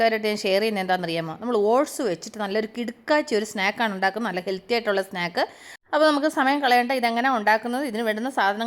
ഞാൻ ഷെയർ ചെയ്യുന്നത് എന്താണെന്നറിയാമോ? നമ്മൾ ഓട്സ് വെച്ചിട്ട് നല്ലൊരു കിടുക്കാച്ചി ഒരു സ്നാക്കാണ് ഉണ്ടാക്കുന്നത്, നല്ല ഹെൽത്തി ആയിട്ടുള്ള സ്നാക്ക്. അപ്പോൾ നമുക്ക് സമയം കളയേണ്ട, ഇതെങ്ങനെ ഉണ്ടാക്കുന്നത്, ഇതിന് വേണ്ടുന്ന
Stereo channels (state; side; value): identical; both; correlation 1.00